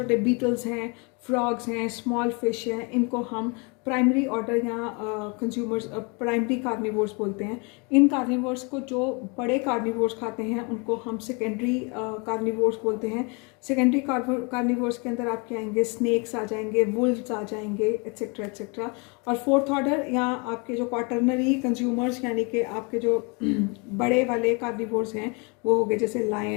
बीटल्स हैं, फ्रॉग्स हैं, स्मॉल फिश हैं, इनको हम प्राइमरी ऑर्डर या कंज्यूमर्स प्राइमरी कार्निवोर्स बोलते हैं। इन कार्निवोर्स को जो बड़े कार्निवोर्स खाते हैं उनको हम सेकेंडरी कार्निवोर्स बोलते हैं। सेकेंडरी कार्निवोर्स के अंदर आपके आएंगे स्नेक्स आ जाएंगे, वुल्व्स आ जाएंगे, एट्सेट्रा एट्सेट्रा। और फोर्थ ऑर्डर या आपके जो क्वाटरनरी कंज्यूमर्स यानी कि आपके जो बड़े वाले कार्निवोर्स हैं वो हो गए जैसे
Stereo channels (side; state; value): right; quieter; 31.9 dB